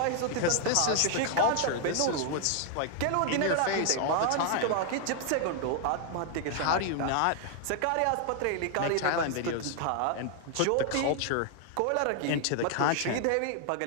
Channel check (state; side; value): different; both; correlation 0.00